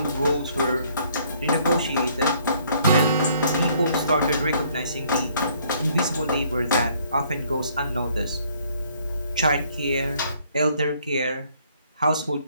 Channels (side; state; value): both; inverted; correlation -0.64